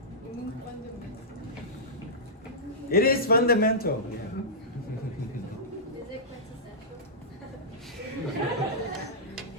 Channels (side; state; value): both; normal; correlation -0.14